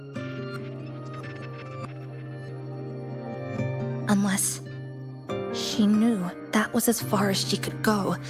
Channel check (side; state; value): both; identical; correlation 1.00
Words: Unless she knew that was as far as she could go.